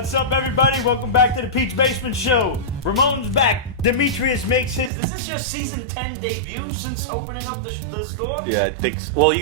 up, everybody? Welcome back to the Peach Basement Show. Ramon's back. Dimitrios makes his. Is this your season 10 debut since opening up the store? Yeah, I think so. Well, you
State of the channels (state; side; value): drops out; left; at 4.9 s